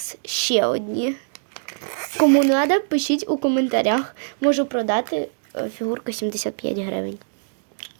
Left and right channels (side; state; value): left; silent; digital silence